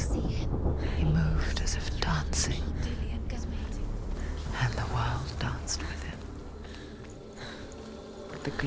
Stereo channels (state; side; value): identical; both; correlation 1.00